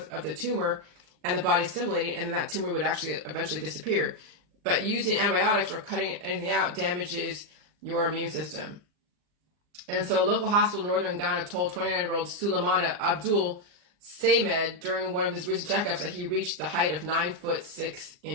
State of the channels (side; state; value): left; late; 39 ms